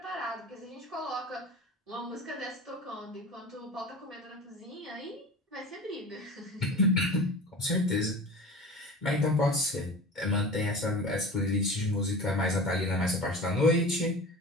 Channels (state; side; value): normal; both; correlation 0.35